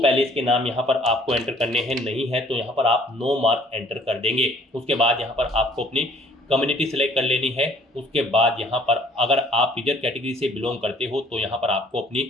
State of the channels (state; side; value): normal; both; correlation 0.57